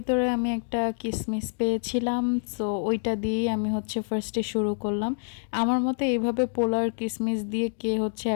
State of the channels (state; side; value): silent; right; digital silence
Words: আমি একটা কিশমিশ পেয়েছিলাম। সো ওইটা দিয়েই আমি হচ্ছে ফার্স্টে শুরু করলাম। আমার মতে এইভাবে পোলাও আর কিশমিশ দিয়ে কে হচ্ছে